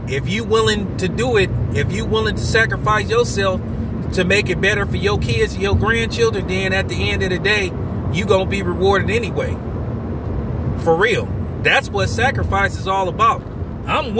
if you willing to do it, if you willing to sacrifice yourself to make it better for your kids and your grandchildren, then at the end of the day, you going to be rewarded anyway. For real. That's what sacrifice is all about. I'm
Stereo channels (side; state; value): both; identical; correlation 1.00